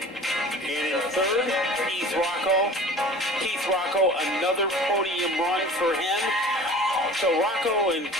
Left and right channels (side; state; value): both; normal; correlation 0.42